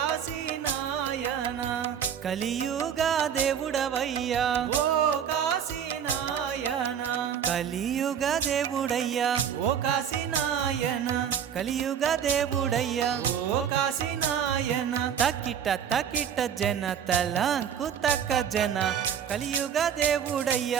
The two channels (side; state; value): left; quieter; 8.3 dB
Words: నాయన కలియుగ దేవుడవయ్యా ఓ కాశీ నాయన కలియుగ దేవుడయ్యా ఓ కాశీ నాయన కలియుగ దేవుడయ్యా ఓ కాశీ నాయన తకిట తకిట జన తలంకు తక్క జన కలియుగ